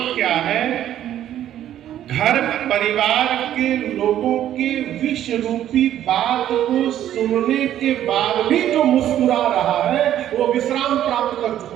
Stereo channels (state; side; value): quieter; left; 11.6 dB